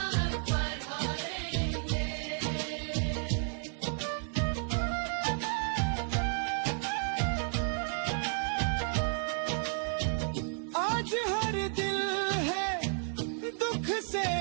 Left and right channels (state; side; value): silent; left; 56 dB below the other